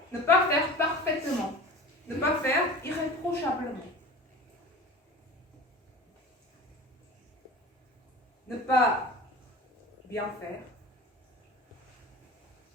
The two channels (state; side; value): normal; both; correlation 0.36